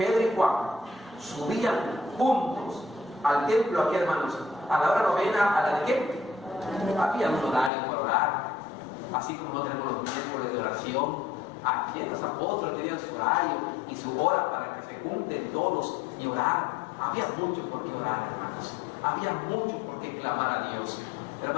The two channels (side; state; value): right; drops out; at 7.7 s